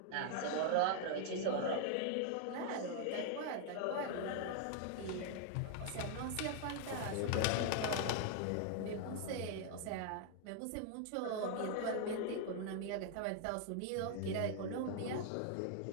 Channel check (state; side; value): different; both; correlation 0.00